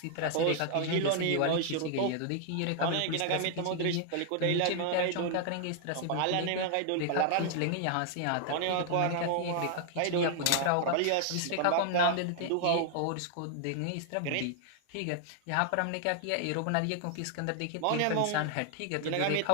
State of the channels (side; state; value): both; different; correlation 0.00